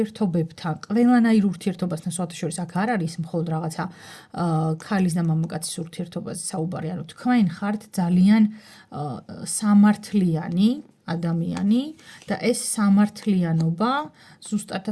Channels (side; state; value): both; identical; correlation 1.00